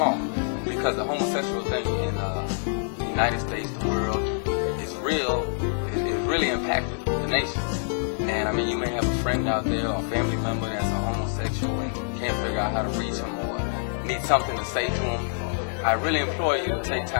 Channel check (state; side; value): silent; right; digital silence